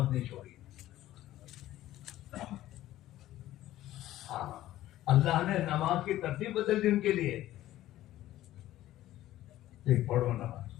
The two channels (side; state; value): right; quieter; 14.4 dB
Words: نہیں چھوڑی۔ ہاں اللہ نے نماز کی ترتیب بدل دی ان کے لیے، ایک پڑھو نماز